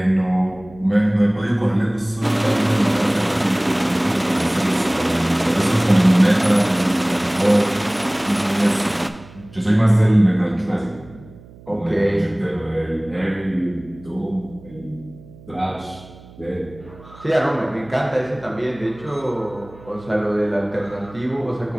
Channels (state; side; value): noise; right; hum, 22 dB below the sound